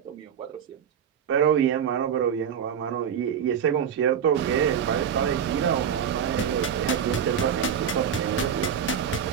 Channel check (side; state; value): left; quieter; 8.0 dB